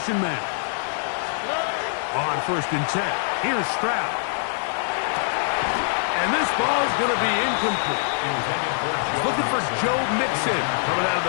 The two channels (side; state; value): right; silent; digital silence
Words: man. On first and 10, here's Stroud. And this ball's going to be incomplete. Looking for Joe Mixon coming out of